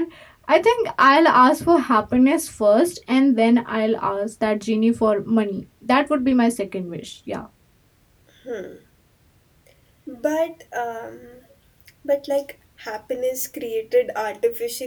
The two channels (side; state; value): both; identical; correlation 1.00